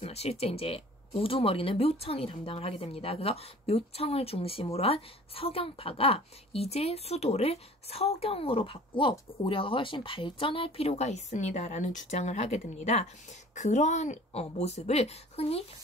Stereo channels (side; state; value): both; normal; correlation 0.47